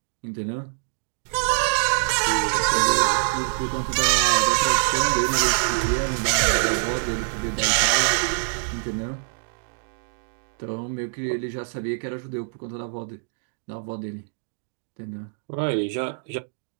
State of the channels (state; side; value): silent; left; digital silence